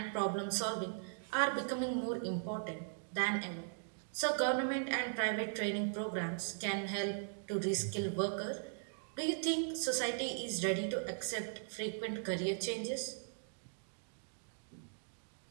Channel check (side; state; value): left; silent; digital silence